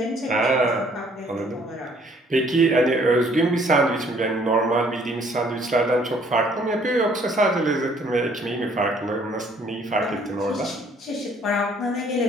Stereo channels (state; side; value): normal; both; correlation 0.61